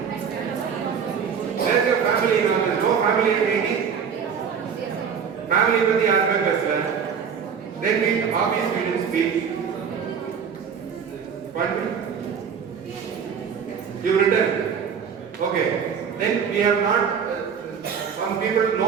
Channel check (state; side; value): quieter; left; 6.9 dB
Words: Where's your family now? There's no family at 80. Family with the aspect as well. Then hobbies we didn't speak. Pardon? You written? Okay. Then we have not, some people,